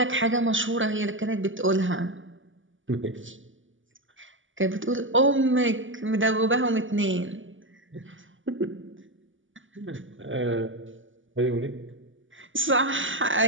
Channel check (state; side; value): late; left; 0.57 ms